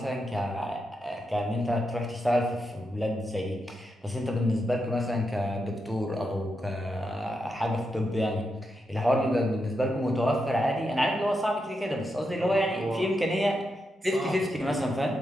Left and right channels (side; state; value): both; normal; correlation 0.85